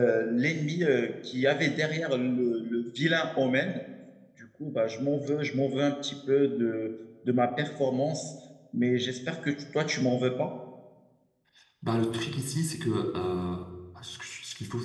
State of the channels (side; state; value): both; identical; correlation 1.00